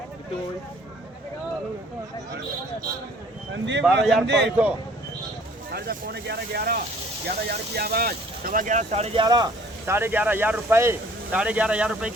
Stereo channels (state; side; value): normal; both; correlation 0.55